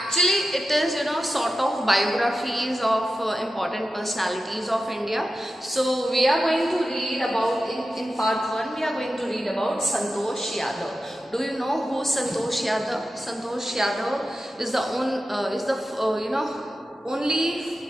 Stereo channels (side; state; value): both; normal; correlation 0.92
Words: it is sort of biographies of important personalities of India. So we are going to read about in part 1 we are going to read about Santosh Yadav. Do you know who Santosh Yadav? Santosh Yadav is the